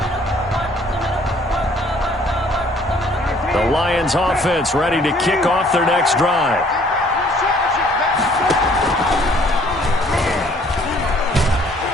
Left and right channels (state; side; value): normal; both; correlation 0.59